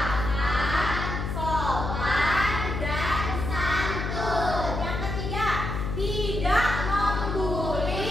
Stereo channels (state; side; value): noise; left; hum, 3 dB below the sound